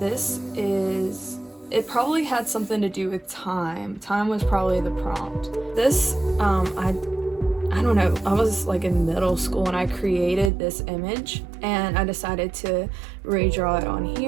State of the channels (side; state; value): left; drops out; at 10.5 s